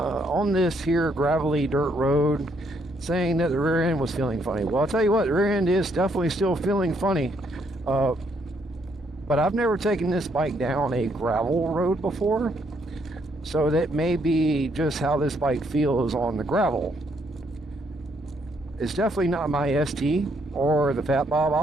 this here gravelly dirt road, saying that the rear end was feeling funny. Well, I'll tell you what, the rear end is definitely still feeling funny. But I've never taken this bike down a gravel road before, so that may be just how this bike feels on the gravel. It's definitely not my ST or the Fat Bob.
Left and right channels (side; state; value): both; normal; correlation 0.72